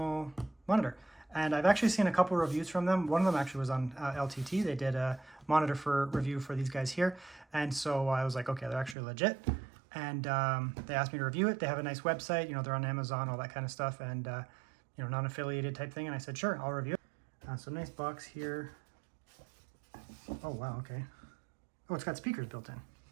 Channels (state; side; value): drops out; left; at 9.0 s